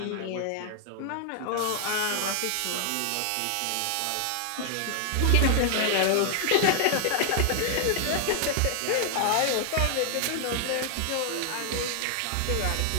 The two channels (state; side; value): different; both; correlation 0.00